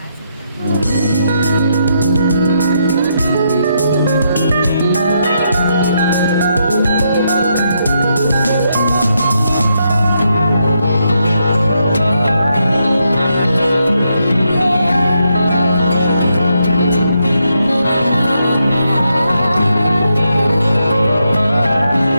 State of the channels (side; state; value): both; inverted; correlation -0.80